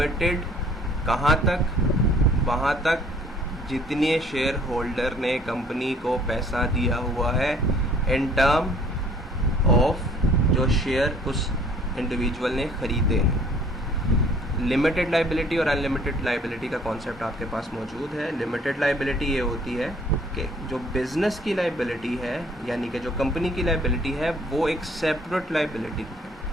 कहाँ तक? वहाँ तक जितने शेयर होल्डर ने कंपनी को पैसा दिया हुआ है in term of जो शेयर उस इंडिविजुअल ने खरीदे हैं। लिमिटेड लाइबिलिटी और अनलिमिटेड लाइबिलिटी का कॉन्सेप्ट आपके पास मौजूद है। लिमिटेड लाइबिलिटी ये होती है कि जो बिजनेस की लाइबिलिटी है, यानी कि जो कंपनी की लाइबिलिटी है, वो एक सेपरेट लाइबिलिटी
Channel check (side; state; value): both; normal; correlation 0.57